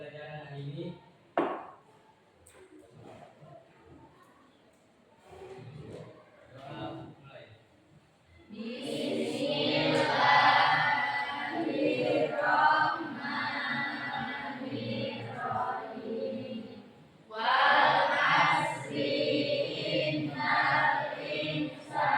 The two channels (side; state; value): both; identical; correlation 1.00